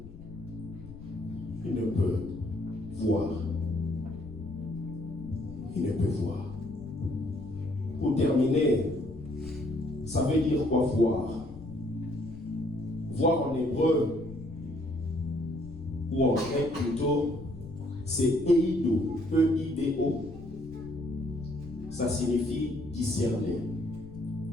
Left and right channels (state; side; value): noise; left; rumble, 16 dB below the sound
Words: il ne peut voir. Il ne peut voir. Pour terminer, ça veut dire quoi voir? Voir en hébreu, ou en grec plutôt, c'est eido, E-I-D-O. Ça signifie discerner,